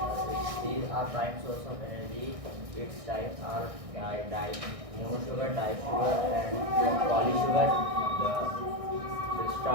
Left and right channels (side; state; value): left; late; 1.6 ms